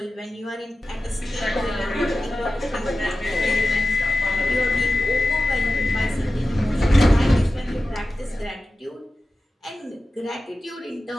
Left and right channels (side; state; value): both; normal; correlation 0.94